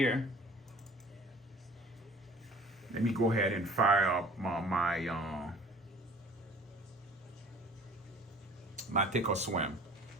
Let me go ahead and fire up my take a swim.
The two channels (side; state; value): both; normal; correlation 0.48